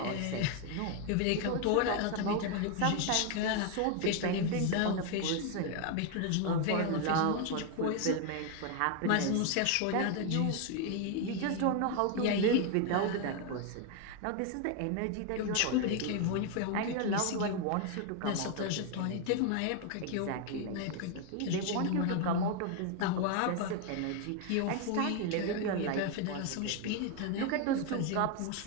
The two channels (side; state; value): both; different; correlation 0.01